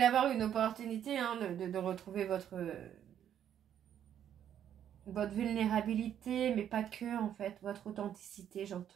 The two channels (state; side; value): quieter; left; 9.9 dB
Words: avoir une opportunité hein, de retrouver votre vulnérabilité, mais pas que, en fait. Votre authenticité,